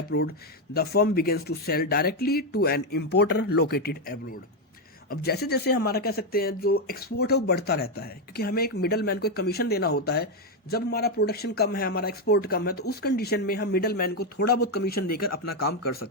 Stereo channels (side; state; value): both; normal; correlation 0.05